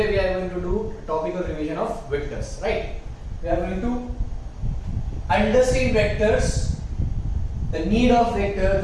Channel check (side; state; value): both; identical; correlation 1.00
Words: we are going to do a topical revision of vectors, right? We are going to understand vectors, the need of vector,